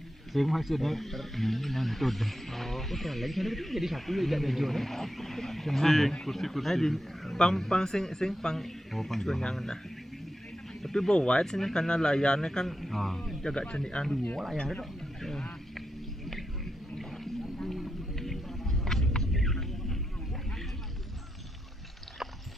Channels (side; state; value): both; normal; correlation 0.86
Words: Sing maksudnya ni nantut. Oh, lagi sana betul jadi satu je ikan hijau ni. Kursi. Pang sing pang Oh, panjang. yang dah. Tapi bawa wide sini karena layarnya kan Ah. jaga cenian. Dua lah yang ada tu.